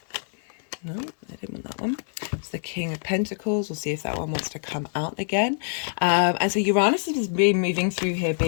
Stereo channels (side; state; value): right; silent; 58 dB below the other